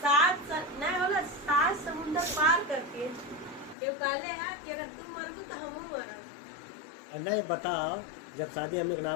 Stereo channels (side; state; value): right; drops out; at 3.8 s